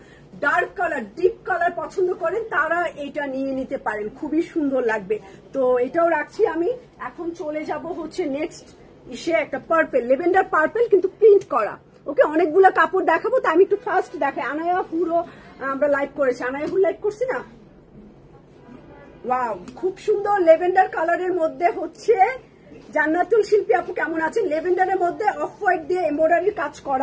ডার্ক কালার, ডিপ কালার পছন্দ করেন তারা এটা নিয়ে নিতে পারেন, খুবই সুন্দর লাগবে। তো এটাও রাখছি আমি। এখন চলে যাব হচ্ছে নেক্সট ইসে, একটা পার্পেল, লেভেন্ডার পার্পেল, কিন্তু প্রিন্ট করা। ওকে, অনেকগুলো কাপড় দেখাবো, তো আমি একটু ফার্স্ট দেখাই। আনায়া পুরো আমরা লাইভ করেছি, আনায়া পুরো লাইভ করছি না? ওয়াও, খুব সুন্দর লেভেন্ডার কালারের মধ্যে হচ্ছে জান্নাতুল শিল্পী আপু কেমন আছেন? লেভেন্ডারের মধ্যে অফ হোয়াইট দিয়ে এমব্রয়ডারির কাজ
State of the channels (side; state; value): both; identical; correlation 1.00